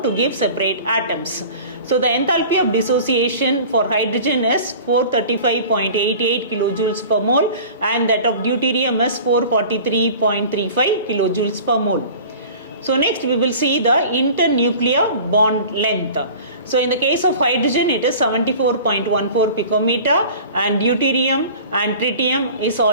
to give separate atoms. So the enthalpy of dissociation for hydrogen is 435.88 kilojoules per mole and that of deuterium is 443.35 kilojoules per mole. So next we will see the internuclear bond length. So in the case of hydrogen it is 74.14 picometer and deuterium and tritium is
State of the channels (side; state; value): both; inverted; correlation -0.41